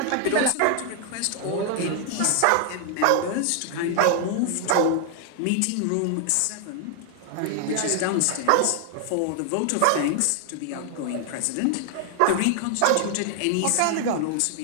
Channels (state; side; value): different; both; correlation 0.00